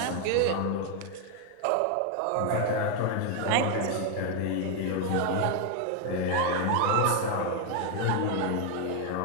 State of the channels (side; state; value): both; different; correlation 0.01